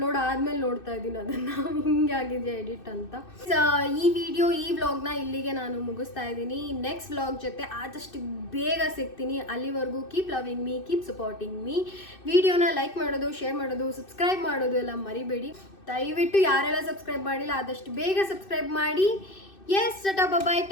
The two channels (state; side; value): late; right; 2.6 ms